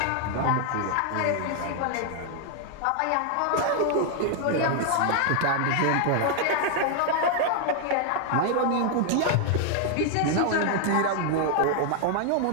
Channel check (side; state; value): both; different; correlation 0.00